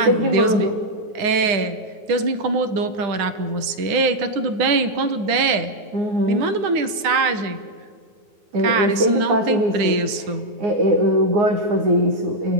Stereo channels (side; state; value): left; late; 9.5 ms